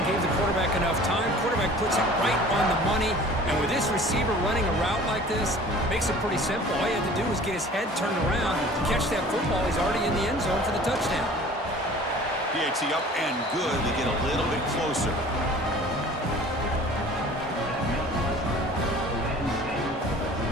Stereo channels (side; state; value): both; normal; correlation 0.46